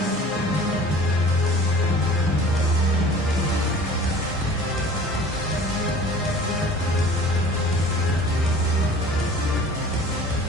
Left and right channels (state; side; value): normal; both; correlation 0.45